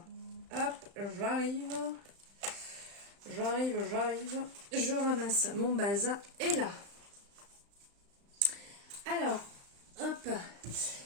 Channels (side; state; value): left; late; 35 ms